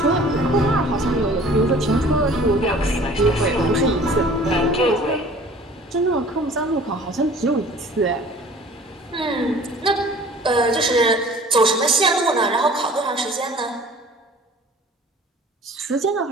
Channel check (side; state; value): both; normal; correlation 0.48